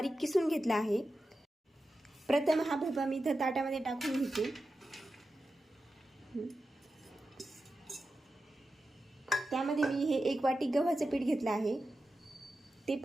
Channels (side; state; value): both; normal; correlation 0.91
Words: किसून घेतला आहे। प्रथम हा भोपळा मी इथं ताटामध्ये टाकून घेते। त्यामध्ये मी हे 1 वाटी गव्हाचं पीठ घेतलं आहे, ते